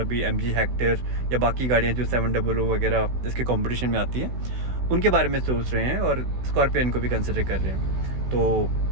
MG हेक्टर या बाकी गाड़ियाँ जो 700 वगैरह जिसके कंपटीशन में आती हैं, उनके बारे में सोच रहे हैं और स्कॉर्पियन को भी कंसिडर कर रहे हैं। तो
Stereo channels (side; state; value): left; late; 16 ms